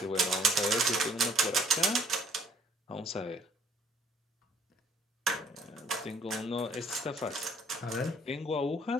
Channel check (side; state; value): both; normal; correlation 0.62